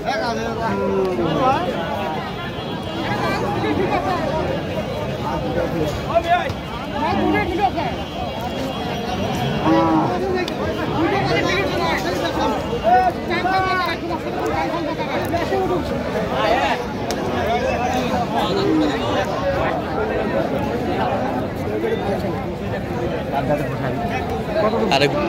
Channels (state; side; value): identical; both; correlation 1.00